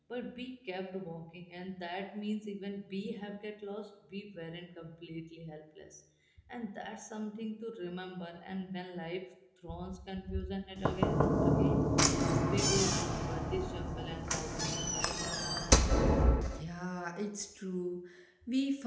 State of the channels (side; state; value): both; identical; correlation 1.00